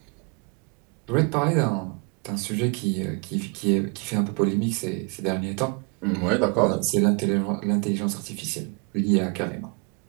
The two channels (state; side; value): quieter; left; 33.1 dB